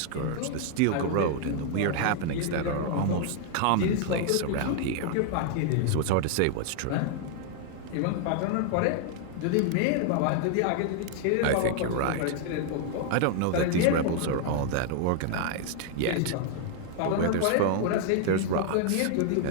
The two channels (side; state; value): both; different; correlation 0.00